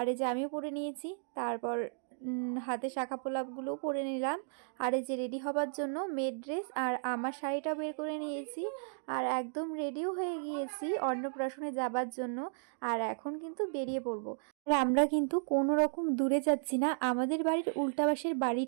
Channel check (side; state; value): left; silent; digital silence